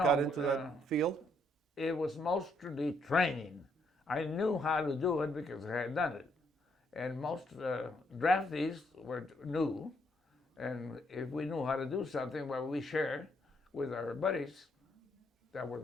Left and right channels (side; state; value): both; normal; correlation 0.72